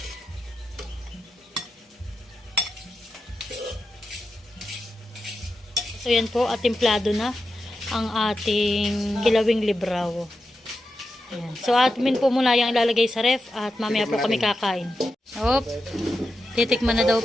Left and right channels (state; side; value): normal; both; correlation 0.89